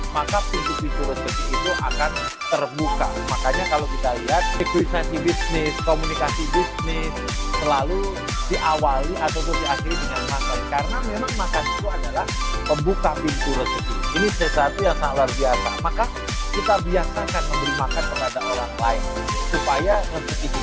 maka pintu-pintu rezeki itu akan terbuka. Makanya kalau kita lihat negosiasi bisnis, komunikasi bisnis selalu diawali ataupun diakhiri dengan makan. Karena memang makan itu adalah pembuka pintu rezeki. Ini sesuatu yang sangat luar biasa. Maka kita biasakan memberi makan kepada orang lain supaya rezeki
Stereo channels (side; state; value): both; identical; correlation 1.00